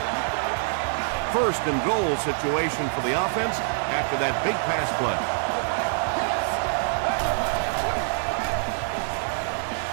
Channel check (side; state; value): left; silent; 61 dB below the other